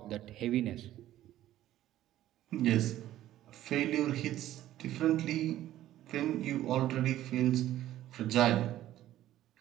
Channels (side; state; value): left; quieter; 13.5 dB